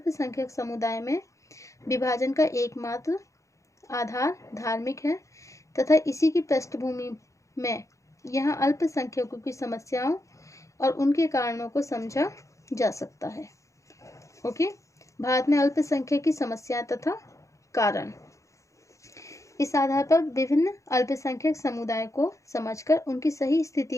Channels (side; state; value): right; late; 0.15 ms